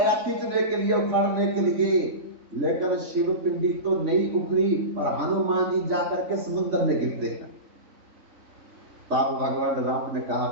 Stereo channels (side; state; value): left; late; 3.5 ms